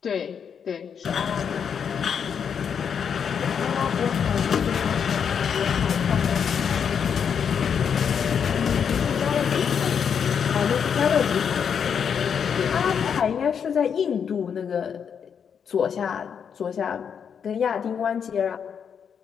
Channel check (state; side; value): quieter; right; 7.3 dB